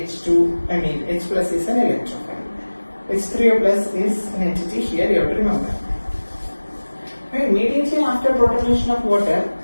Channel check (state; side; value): inverted; both; correlation -1.00